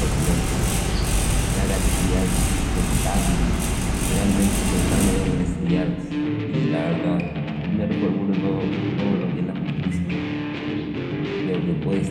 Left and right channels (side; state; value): both; identical; correlation 1.00